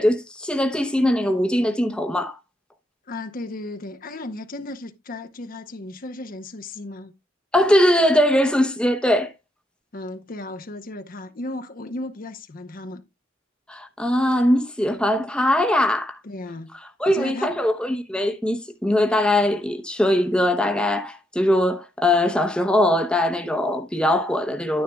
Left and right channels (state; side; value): normal; both; correlation 0.79